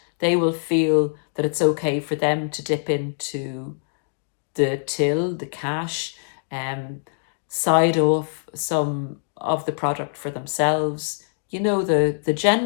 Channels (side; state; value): right; silent; digital silence